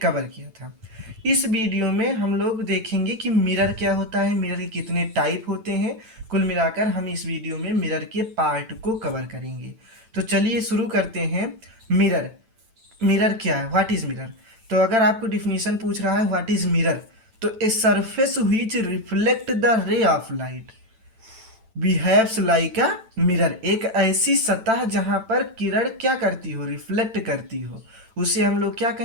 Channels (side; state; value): left; late; 8.9 ms